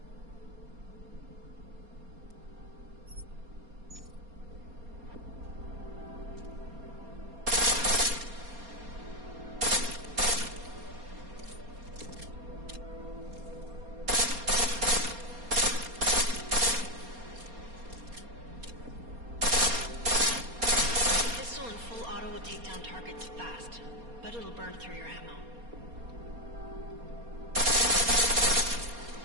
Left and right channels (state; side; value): late; left; 4.3 ms